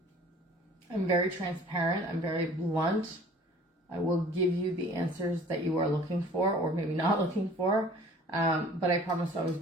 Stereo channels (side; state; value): both; normal; correlation 0.49